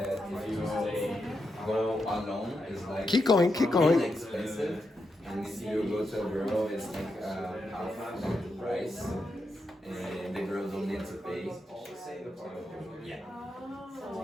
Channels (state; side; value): normal; both; correlation 0.85